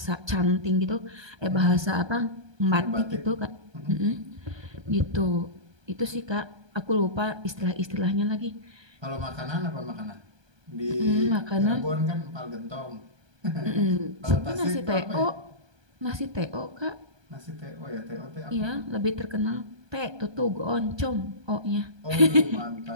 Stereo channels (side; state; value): left; late; 1.2 ms